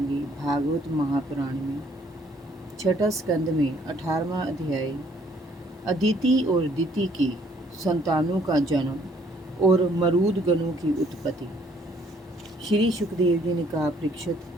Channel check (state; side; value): normal; both; correlation 0.64